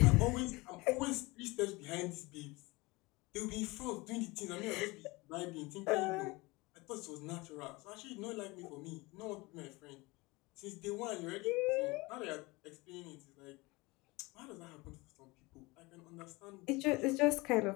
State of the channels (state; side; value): quieter; right; 23.6 dB